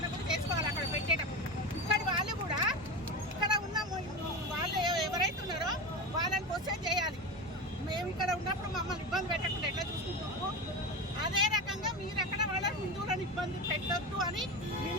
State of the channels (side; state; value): both; normal; correlation 0.23